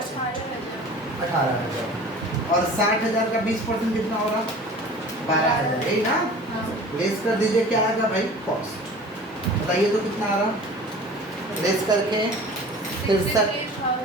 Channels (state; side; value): normal; both; correlation 0.42